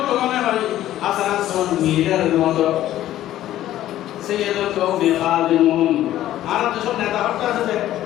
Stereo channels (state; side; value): quieter; right; 13.3 dB